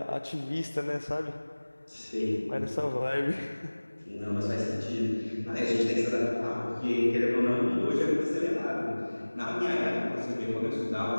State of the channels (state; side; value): inverted; both; correlation -1.00